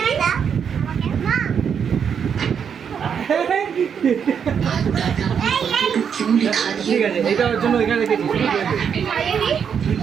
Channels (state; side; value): quieter; left; 7.4 dB